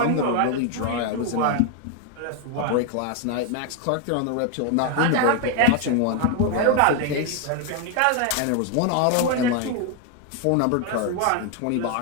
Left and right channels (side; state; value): both; different; correlation 0.01